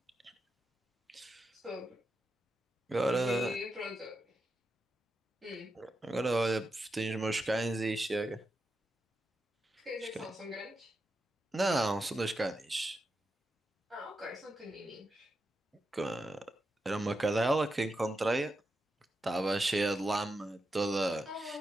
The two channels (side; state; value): both; normal; correlation 0.87